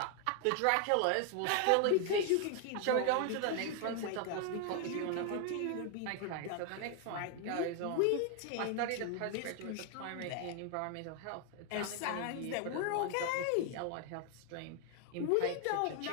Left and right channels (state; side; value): different; both; correlation 0.00